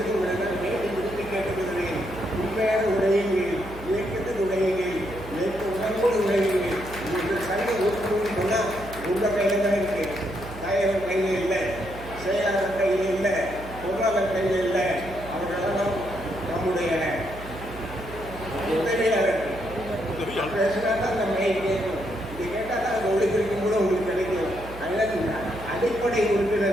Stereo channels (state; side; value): noise; right; hum, 14 dB below the sound